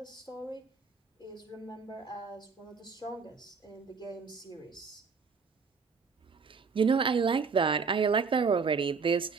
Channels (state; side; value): quieter; left; 5.3 dB